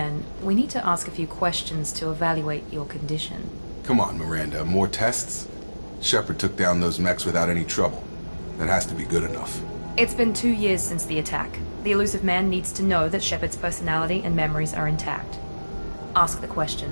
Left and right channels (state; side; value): inverted; both; correlation -1.00